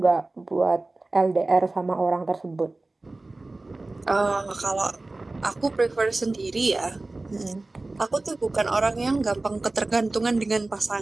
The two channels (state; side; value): quieter; left; 3.1 dB